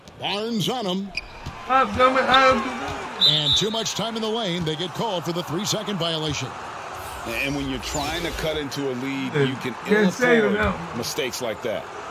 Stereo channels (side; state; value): both; identical; correlation 1.00